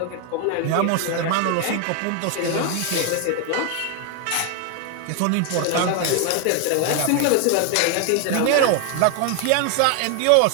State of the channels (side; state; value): both; different; correlation 0.01